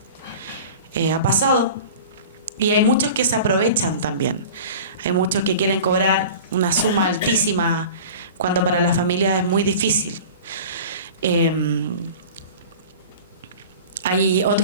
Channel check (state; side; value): inverted; both; correlation -0.38